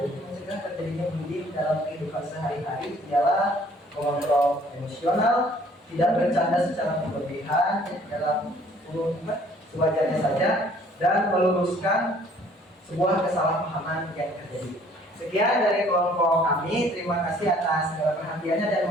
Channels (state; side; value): normal; both; correlation 0.58